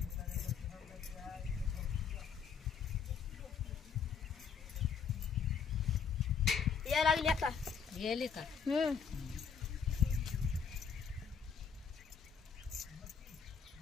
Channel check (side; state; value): right; quieter; 6.4 dB